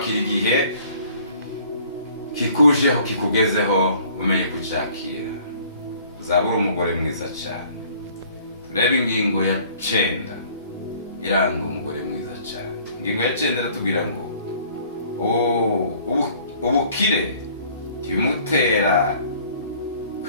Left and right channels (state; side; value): inverted; both; correlation -0.55